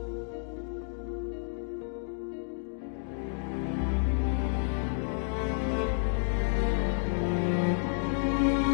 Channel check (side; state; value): right; silent; digital silence